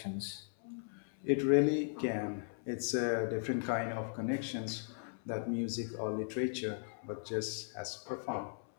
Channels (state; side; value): silent; right; 53 dB below the other